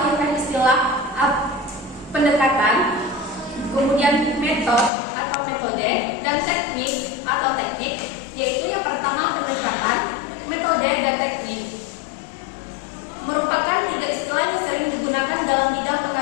istilah pendekatan, kemudian metode dan teknik atau teknik, yaitu yang pertama pendekatan, metode, dan teknik. Merupakan 3 istilah yang sering digunakan dalam bidang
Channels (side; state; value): right; drops out; at 4.9 s